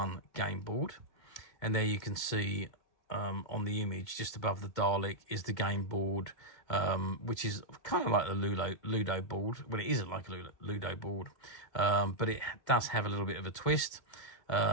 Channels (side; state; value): right; late; 2.1 ms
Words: game board. And there you can see on the image just above the Dalek is the game board, which is kind of like the Ludo board. Well, it isn't like a Ludo board, but it does have a little bit of a twist.